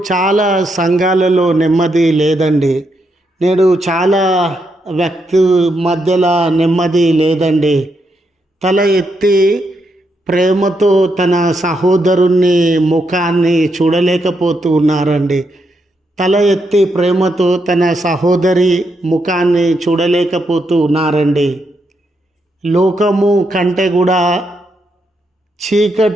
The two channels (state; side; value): normal; both; correlation 0.81